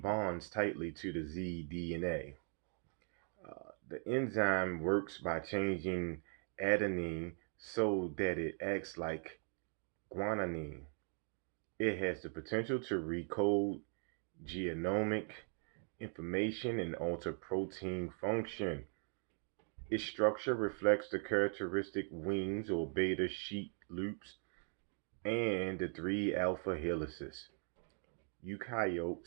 bonds tightly to the zDNA. The enzyme works by changing adenine so that it acts like guanine. It has the potential to recode genomic information and alter protein function. Its structure reflects the characteristic wings or beta sheet loops and the three alpha helices.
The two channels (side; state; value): left; silent; 51 dB below the other